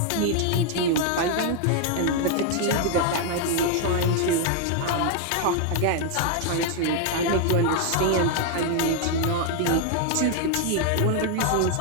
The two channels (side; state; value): both; different; correlation 0.00